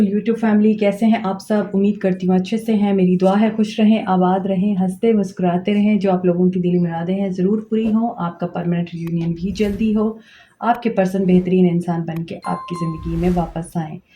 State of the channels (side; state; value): both; identical; correlation 1.00